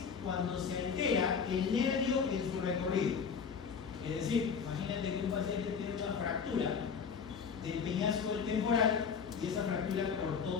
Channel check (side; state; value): right; quieter; 6.2 dB